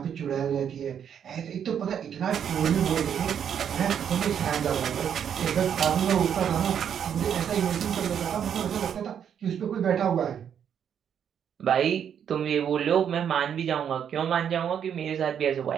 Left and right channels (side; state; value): left; quieter; 8.5 dB